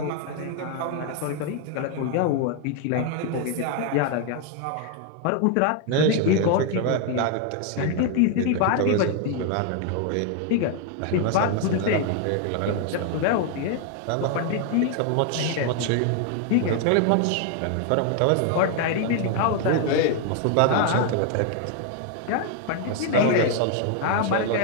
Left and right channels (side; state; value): both; different; correlation 0.00